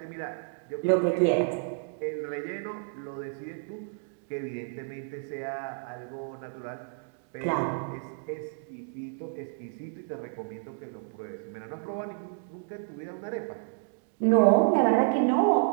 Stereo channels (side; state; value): left; silent; digital silence